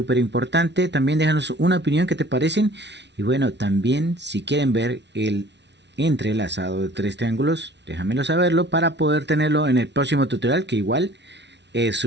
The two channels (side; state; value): left; late; 0.51 ms